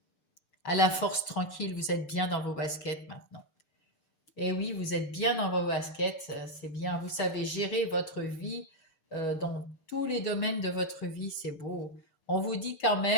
à la force tranquille, vous êtes bien dans vos baskets maintenant. Et oui, vous êtes bien dans vos baskets, c'est bien. Vous savez gérer votre vie dans tous les domaines de votre vie, c'est beau. On vous dit quand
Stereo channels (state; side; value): late; right; 6.3 ms